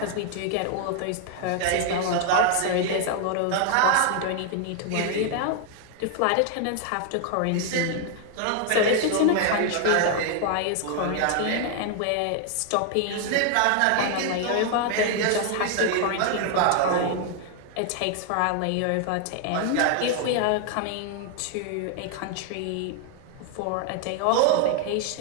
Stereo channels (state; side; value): different; both; correlation 0.00